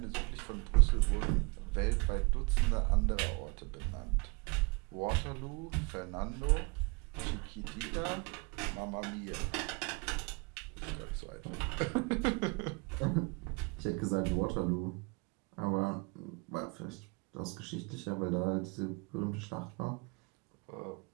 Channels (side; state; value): left; quieter; 30.6 dB